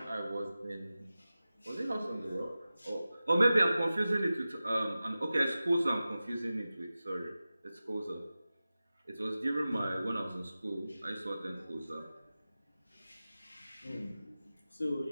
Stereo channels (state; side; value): inverted; both; correlation -0.95